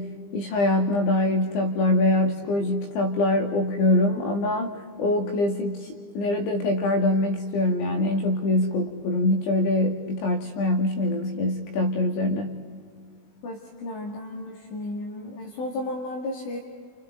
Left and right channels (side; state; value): right; late; 20 ms